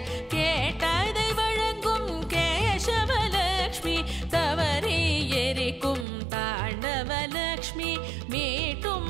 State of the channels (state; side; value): drops out; left; at 6.1 s